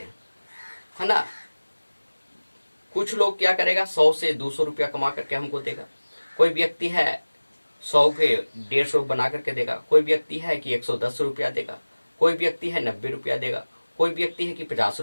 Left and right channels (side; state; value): both; inverted; correlation -1.00